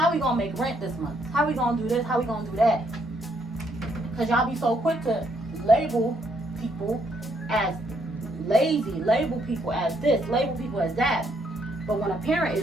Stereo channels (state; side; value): normal; both; correlation 0.72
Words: we gonna make rent this month? How we gonna do this? How we gonna do that? Because y'all be so quick to label people as lazy, label people as this, label people as that. But when a parent